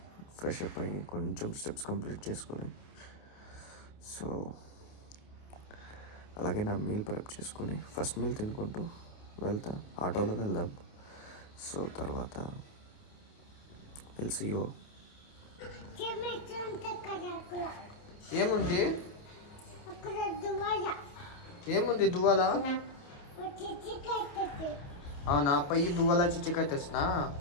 ఫ్రెష్ అప్ అయ్యి కొంచెం స్టెప్స్ కంప్లీట్ చేసుకొని, సో అలాగే నా మీల్ ప్రెప్ చేసుకొని ఫస్ట్ మీల్ తినుకుంటూ వెళ్తా. ఆటోలో వెళ్దాం. సో తర్వాత సీ యూ. ఏముంది ఏముంది దువ్వాలా? అవునా, పయ్యి దువ్వాలా చిచ్చికాయ తెస్తున్నా.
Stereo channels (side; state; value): right; late; 28 ms